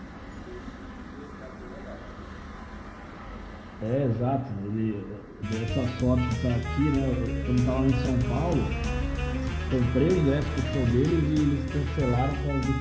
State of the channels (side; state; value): both; identical; correlation 1.00